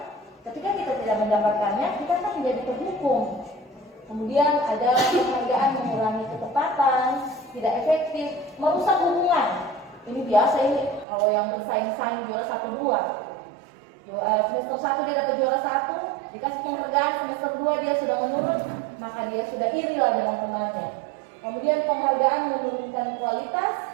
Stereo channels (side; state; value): left; drops out; at 11.1 s